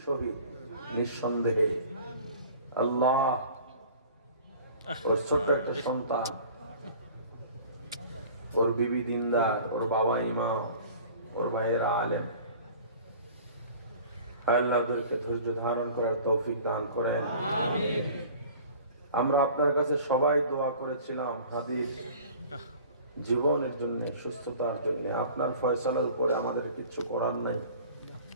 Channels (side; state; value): both; inverted; correlation -0.45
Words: শহীদ, নিঃসন্দেহে। আল্লাহ ওর ছোট্ট একটা সন্তান, ওর বিবি দিনদার, ওর বাবা ইমাম, ওর ভাইয়েরা আলেম। আল্লাহ ওদেরকে ধৈর্য ধারণ করার তৌফিক দান করেন। আমিন। আমরা আপনার কাছে সবাই দোয়া করেছিলাম হাদির জীবনের জন্য, সুস্থতার জন্য। আপনার ফয়সালার উপরে আমাদের কিছু করার নাই,